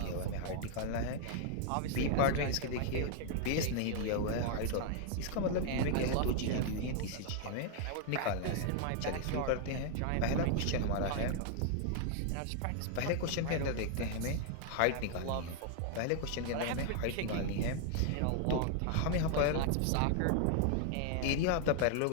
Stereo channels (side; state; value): both; different; correlation 0.00